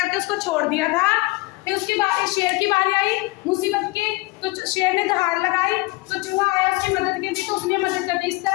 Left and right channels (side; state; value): right; quieter; 23.4 dB